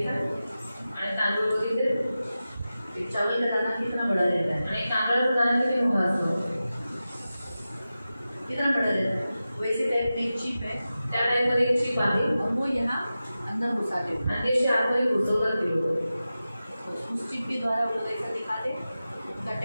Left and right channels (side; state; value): both; inverted; correlation -0.94